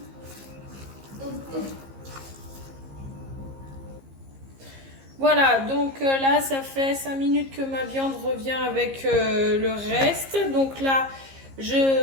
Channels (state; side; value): late; left; 15 ms